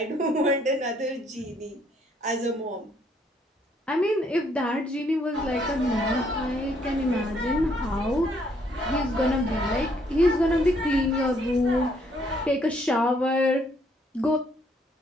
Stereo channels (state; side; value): normal; both; correlation 0.68